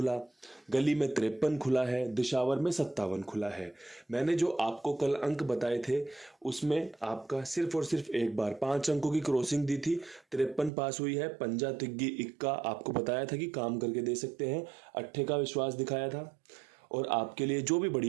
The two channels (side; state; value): left; drops out; at 10.7 s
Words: गली में 53 खुला है, दिशावर में 57 खुला है। मैंने जो आपको कल अंक बताए थे उसमें आपका सिर्फ और सिर्फ एक बार 5 अंकों की क्रॉसिंग दी थी, 53 पास हुई है। पंजा तिग्गी इक्का आपको बताया था कि काम करके दे सकते हैं, अट्ठे का विश्वास दिखाया था और आपके लिए जो भी